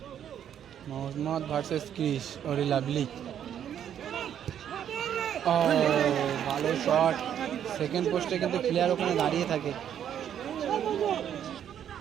মোহাম্মদ ভার্সেস ক্রিশ, ওরে লাভলি, ভালো শট, সেকেন্ড পোস্টে কিন্তু প্লেয়ার ওখানে দাঁড়িয়ে থাকে।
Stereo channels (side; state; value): left; quieter; 9.6 dB